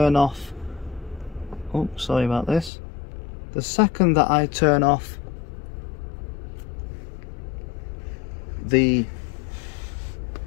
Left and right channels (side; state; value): right; drops out; at 2.7 s